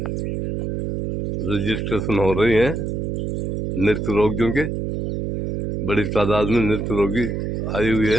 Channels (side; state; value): right; noise; hum, 2 dB below the sound